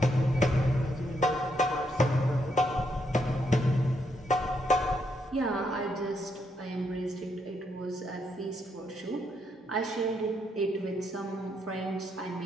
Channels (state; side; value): normal; both; correlation 0.77